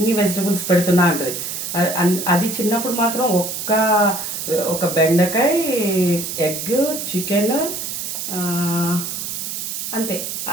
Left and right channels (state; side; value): noise; right; hiss, 5 dB below the sound